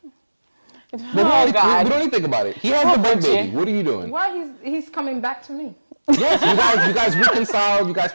But Oh, we God. don't even think about it. He has Oh, the break Richie. baby. What are you doing? Why he's coming back to me? Yes, you guys reconciled. You guys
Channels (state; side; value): inverted; both; correlation -1.00